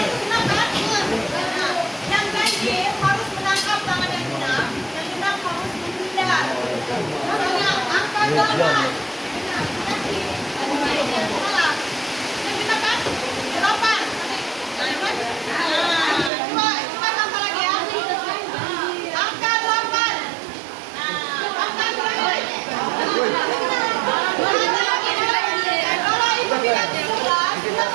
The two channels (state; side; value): drops out; left; at 16.3 s